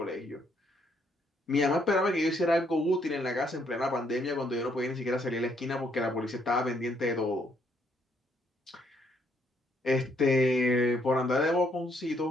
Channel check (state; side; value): normal; both; correlation 0.71